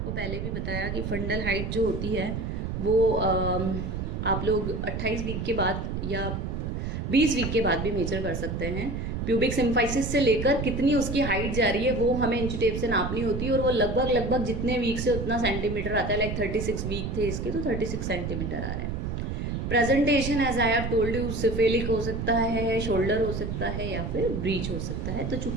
पहले भी बताया कि फंडल हाइट जो होती है वो आप लोग 28 वीक के बाद या 20 वीक के बाद भी मेजर कर सकते हैं। प्यूबिक सिम्फाइसिस से लेकर कितनी उसकी हाइट जा रही है वो हमें इंच टेप से नापनी होती है, और वो लगभग जितने वीक से उतना सेंटीमीटर आता है। लाइक 36 वीक थे इसके तो 36 सेंटीमीटर आ रहा है। Presentation as I have told you, cephalic हो सकता है, शोल्डर हो सकता है, या फिर ब्रीच हो सकता है। तो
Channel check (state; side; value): noise; right; rumble, 3 dB below the sound